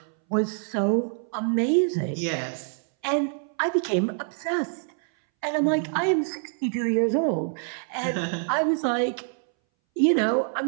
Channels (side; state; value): left; silent; 60 dB below the other